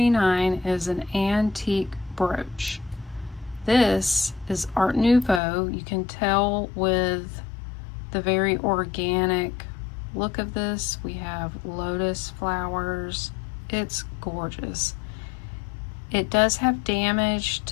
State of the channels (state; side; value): drops out; right; at 5.4 s